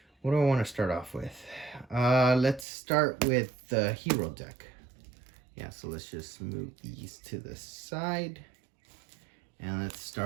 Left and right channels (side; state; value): left; drops out; at 2.7 s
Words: what do I want to start off with? Let's start with the hero deck. Yeah, so let's just move these to the side. And let's